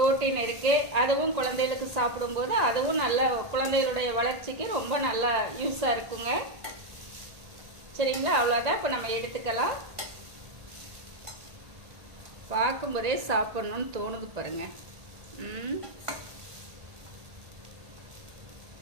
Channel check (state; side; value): late; left; 1.8 ms